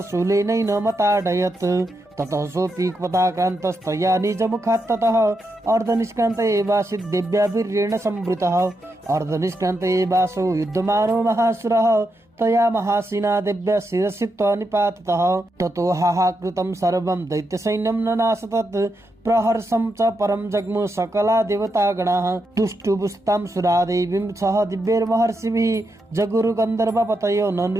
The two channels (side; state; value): both; normal; correlation 0.84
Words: शूलेनैन मताडयत् ततः सोऽपि पदाक्रान्तस्तया निजमुखात् ततः अर्धनिष्क्रान्त एवासीत् देव्या वीर्येण संवृतः अर्धनिष्क्रान्त एवासौ युद्धमानो महासुरः तया महासेना देव्या शिरसित्वा निपातितः ततो हाहाकृतं सर्वं दैत्यसैन्यं ननाश तत् प्रहर्षं च परं जग्मु सकला देवतागणाः तुष्टुबुस्तां सुरादेवीं सह दिव्यैर्महर्षिभिः जगुरु गन्धर्वपतयो